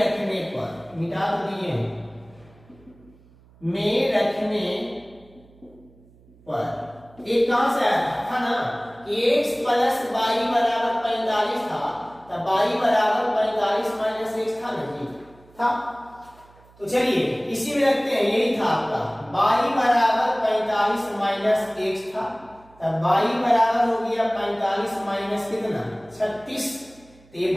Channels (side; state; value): right; noise; hum, 27 dB below the sound